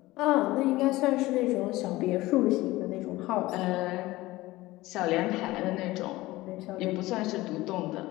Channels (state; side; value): quieter; right; 18.7 dB